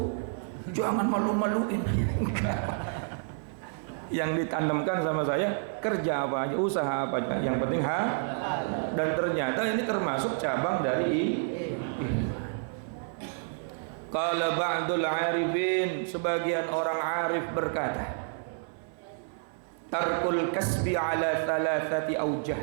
jangan malu-maluin. Yang ditanamkan sama saya, kerja apa aja, usaha apa aja, yang penting dan ternyata ini termasuk cabang dari Qala ba'dul arifin, sebagian orang arif berkata, tarkul kasbi ala thalathati aujah,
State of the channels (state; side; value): silent; left; 58 dB below the other